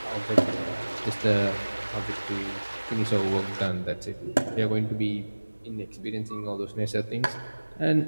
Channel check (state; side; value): inverted; both; correlation -1.00